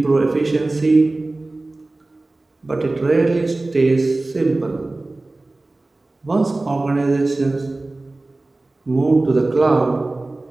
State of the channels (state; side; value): quieter; left; 3.0 dB